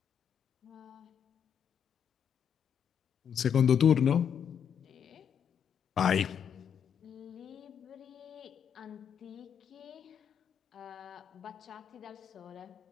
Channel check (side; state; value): right; quieter; 8.0 dB